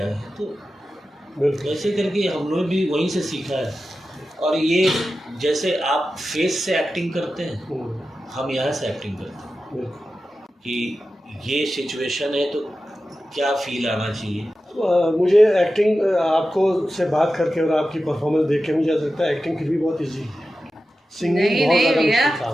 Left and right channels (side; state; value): both; normal; correlation 0.93